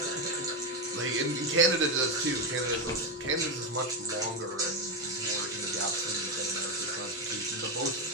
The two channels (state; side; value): normal; both; correlation 0.09